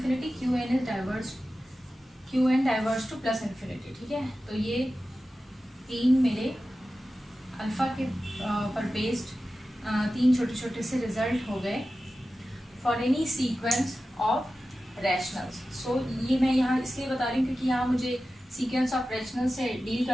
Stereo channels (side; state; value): both; normal; correlation 0.94